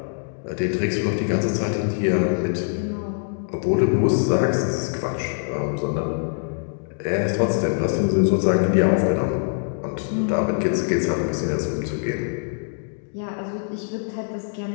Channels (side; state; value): right; silent; 63 dB below the other